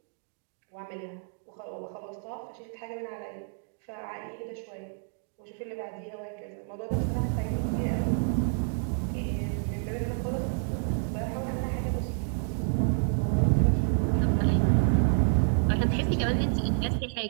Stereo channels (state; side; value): silent; left; 58 dB below the other